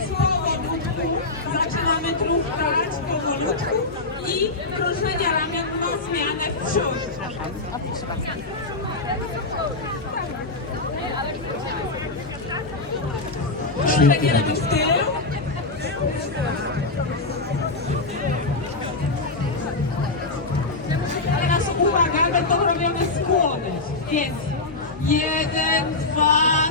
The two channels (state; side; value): quieter; right; 3.3 dB